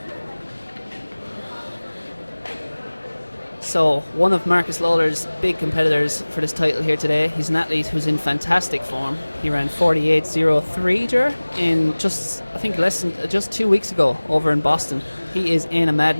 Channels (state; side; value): inverted; both; correlation -1.00